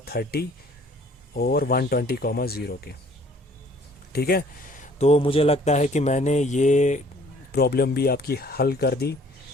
और 120,0 के, ठीक है। तो मुझे लगता है कि मैंने ये प्रॉब्लम भी आपकी हल कर दी,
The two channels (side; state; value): both; normal; correlation 0.56